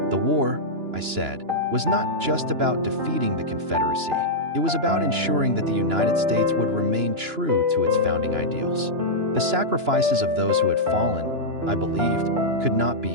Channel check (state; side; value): late; left; 2.9 ms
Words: The war, I said, was not just about defeating the Confederacy. It was about ensuring that the United States would remain true to its founding ideals. The sacrifices of those who had fallen, I believed, could not